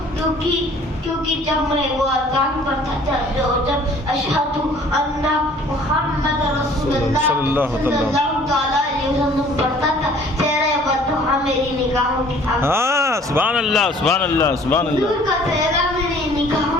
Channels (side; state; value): both; normal; correlation 0.54